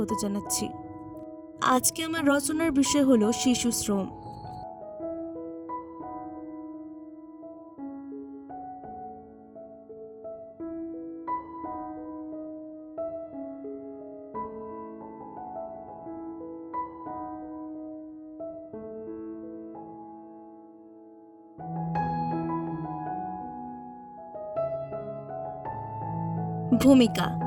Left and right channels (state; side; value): identical; both; correlation 1.00